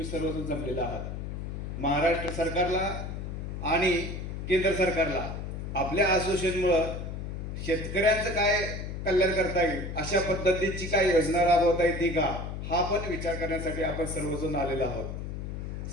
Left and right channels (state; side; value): noise; left; hum, 6 dB below the sound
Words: सर्वजण जमलेला आहात. महाराष्ट्र सरकारला आणि केंद्र सरकारला आपल्या असोसिएशनमुळं शेतकऱ्यांचं काय कल्याण करता येईल, अशा पद्धतीची काय योजना राबवता येते का, हा पण विचार करण्यासाठी आपण सर्वजण आलेलो आहोत.